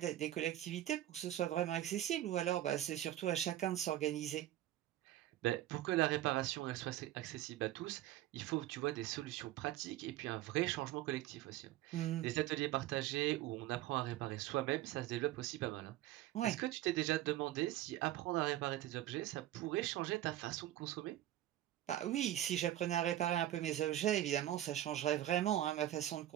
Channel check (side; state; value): left; quieter; 13.6 dB